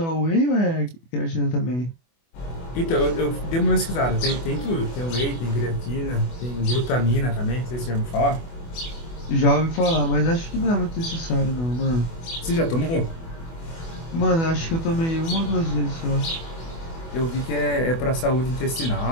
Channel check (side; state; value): right; late; 24 ms